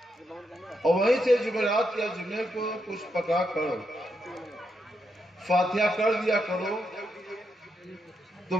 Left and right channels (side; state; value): both; normal; correlation 0.82